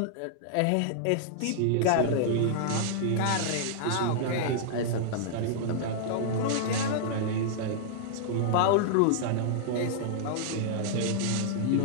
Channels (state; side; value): different; both; correlation -0.01